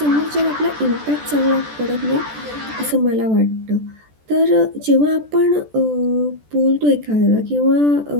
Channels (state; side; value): late; left; 14 ms